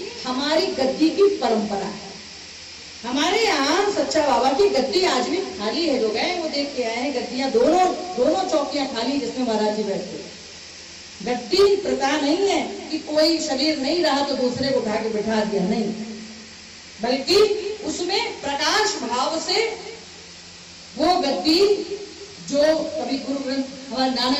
हमारी गद्दी की परंपरा है। हमारे यहाँ सच्चा बाबा की गद्दी आज भी खाली है। जो गए वो देख के आए हैं, गद्दियां दोनों चौकियां खाली जिसमें महाराज जी बैठते हैं। गद्दी प्रथा नहीं है कि कोई शरीर नहीं रहा तो दूसरे को उठा के बिठा दिया, नहीं, बल्कि उसमें प्रकाश भाव से वो गद्दी जो कभी गुरु ग्रंथ हमारे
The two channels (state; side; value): identical; both; correlation 1.00